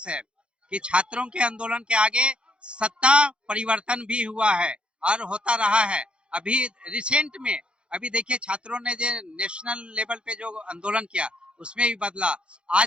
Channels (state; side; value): late; left; 0.056 ms